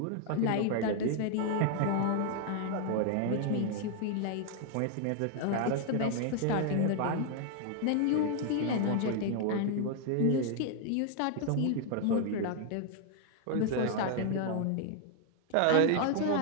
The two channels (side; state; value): both; different; correlation 0.00